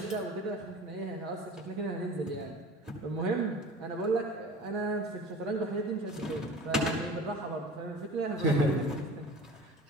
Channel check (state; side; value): normal; both; correlation 0.40